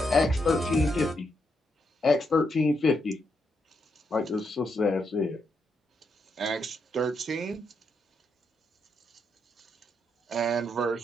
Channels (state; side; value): normal; both; correlation 0.80